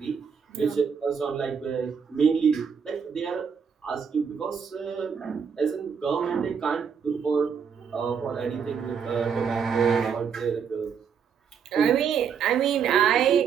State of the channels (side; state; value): left; quieter; 6.8 dB